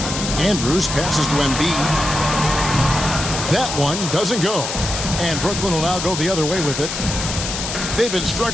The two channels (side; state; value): left; noise; hiss, 5 dB below the sound